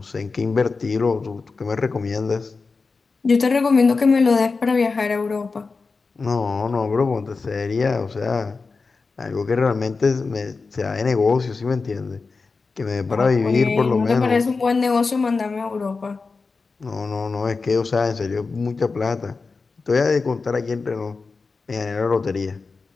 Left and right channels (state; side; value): quieter; right; 4.3 dB